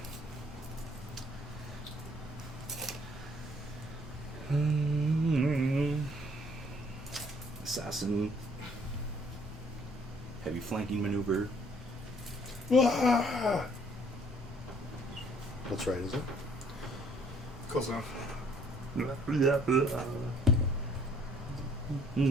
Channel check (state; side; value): normal; both; correlation 0.61